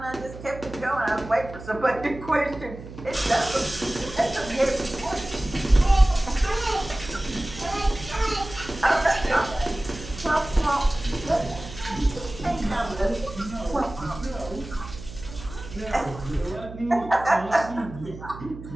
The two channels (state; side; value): noise; right; hum, 13 dB below the sound